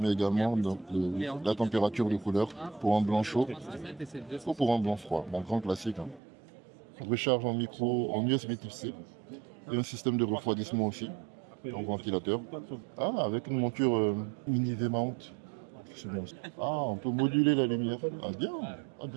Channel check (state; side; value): drops out; left; at 6.2 s